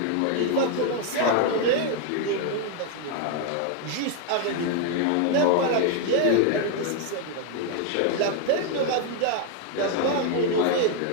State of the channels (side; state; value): both; different; correlation 0.01